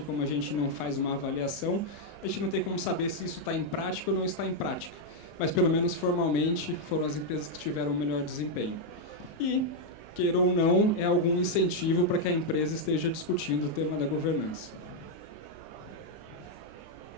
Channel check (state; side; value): late; right; 20 ms